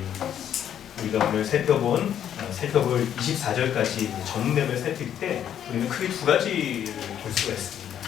우리가 오늘 살펴볼 24절까지 전맥을 살필 때 우리는 크게 두 가지를 볼 수가 있습니다.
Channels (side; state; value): right; quieter; 9.8 dB